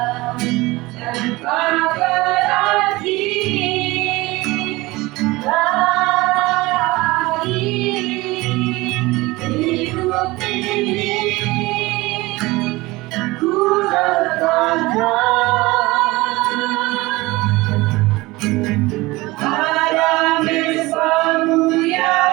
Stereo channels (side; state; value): left; quieter; 21.0 dB